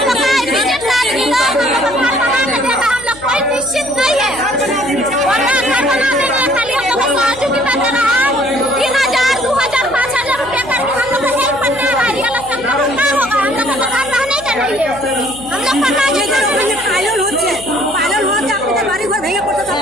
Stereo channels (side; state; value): left; noise; hum, 20 dB below the sound